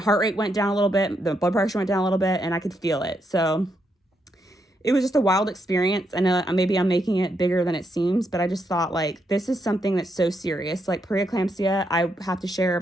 rate went down a little bit, the blood pressure went down a little bit, and I could feel it. So it was just a wild experience. I know maybe I'm making it bigger than it seems, but I just thought like, this is something that's so serious. Like preeclampsia, I have to share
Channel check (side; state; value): both; normal; correlation 0.79